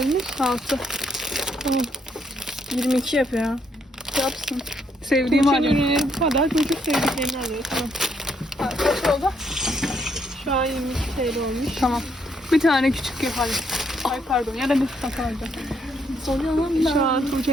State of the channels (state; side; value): normal; both; correlation 0.73